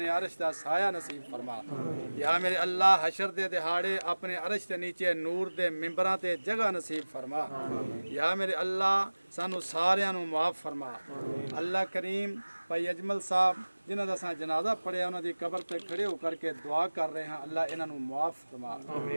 عرش دا سایہ نصیب فرما یا میرے اللہ حشر دے دہاڑے اپنے عرش دے نیچے نور دے ممبراں تے جگہ نصیب فرما یا میرے اللہ سانو ساریاں نو معاف فرما اللہ کریم بھائی اجمل صاحب جنہاں دا ساں جنازہ پڑھیا انہاں دی قبر تے کھڑے ہو کر کے دعا کر رہے ہیں اللہ انہاں نو معاف فرما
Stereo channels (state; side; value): inverted; both; correlation -1.00